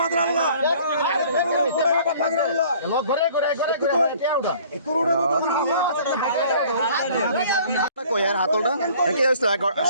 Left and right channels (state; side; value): inverted; both; correlation -0.53